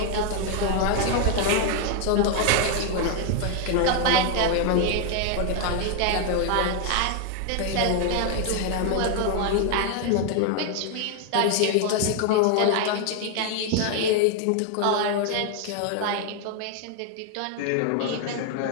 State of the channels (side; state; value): both; different; correlation 0.00